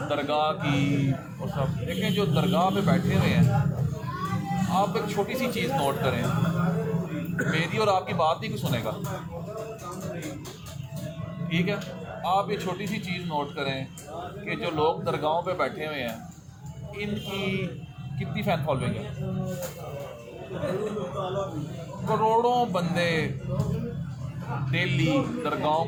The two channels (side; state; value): both; identical; correlation 1.00